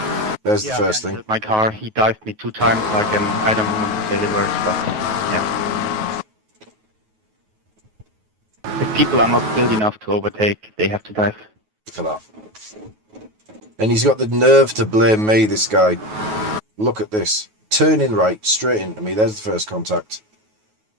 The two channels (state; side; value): late; left; 9.3 ms